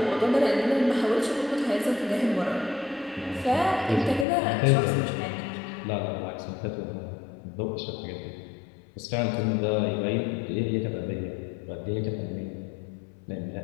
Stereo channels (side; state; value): right; drops out; at 4.2 s